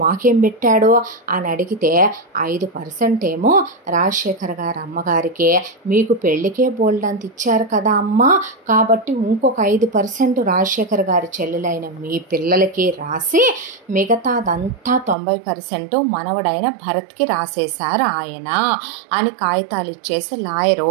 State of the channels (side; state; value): left; drops out; at 15.2 s